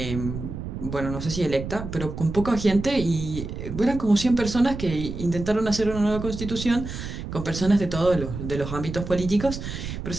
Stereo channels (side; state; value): right; noise; rumble, 7 dB below the sound